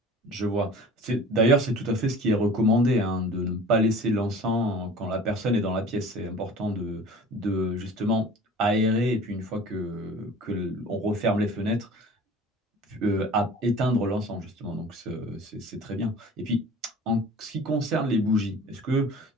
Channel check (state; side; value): normal; both; correlation 0.43